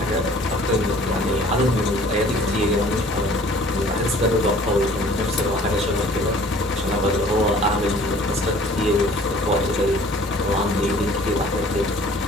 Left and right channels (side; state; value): both; normal; correlation 0.52